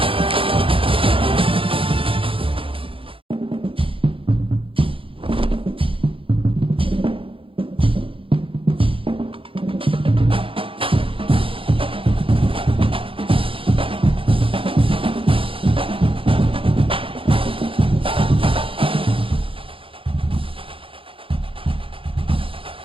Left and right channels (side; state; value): left; late; 0.26 ms